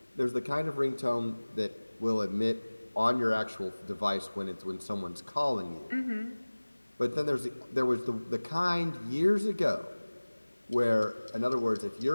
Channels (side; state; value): both; inverted; correlation -1.00